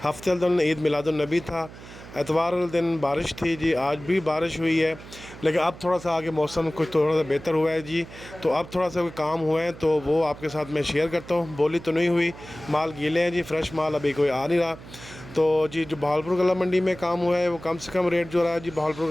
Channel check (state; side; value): noise; right; hum, 17 dB below the sound